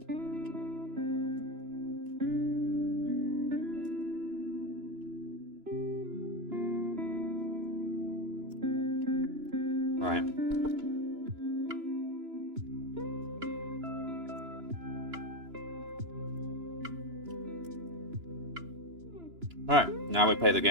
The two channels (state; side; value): late; left; 2.9 ms